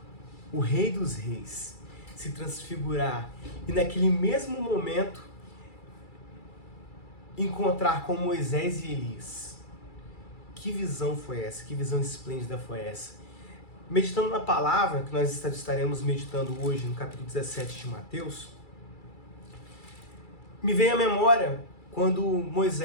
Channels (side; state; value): right; late; 2.3 ms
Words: o Rei dos Reis se transfigurar e naquele mesmo momento encontrar com Moisés e Elias? Que visão foi essa? Que visão esplêndida foi essa? Meditando na palavra, que nós estaremos meditando hoje no capítulo 17 de Mateus, me veio à memória quando